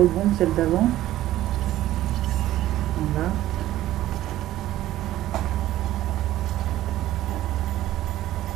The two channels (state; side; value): quieter; left; 14.3 dB